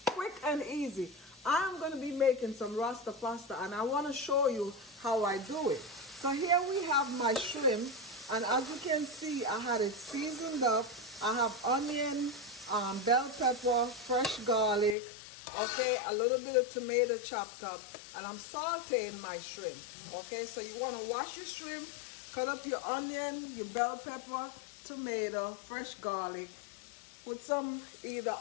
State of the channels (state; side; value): drops out; right; at 15.0 s